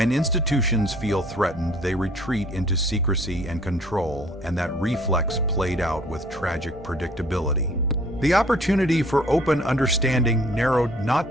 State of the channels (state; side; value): normal; both; correlation 0.56